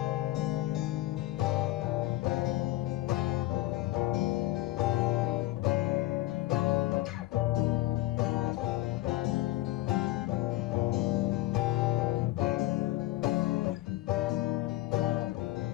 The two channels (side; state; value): right; quieter; 17.3 dB